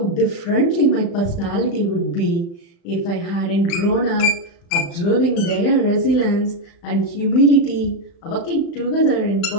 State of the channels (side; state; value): right; late; 35 ms